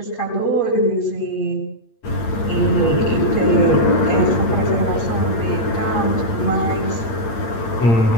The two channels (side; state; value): right; late; 8.6 ms